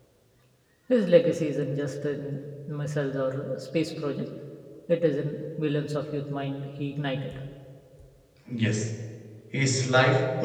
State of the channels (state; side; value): identical; both; correlation 1.00